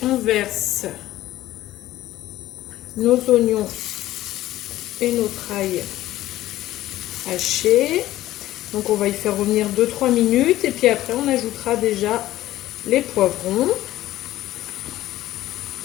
on verse nos oignons et notre ail haché. Donc on va y faire revenir 2-3 minutes et puis après on ajoutera déjà les poivrons.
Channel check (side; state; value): right; quieter; 15.1 dB